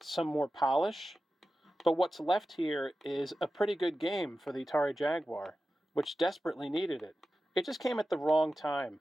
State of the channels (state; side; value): normal; both; correlation 0.94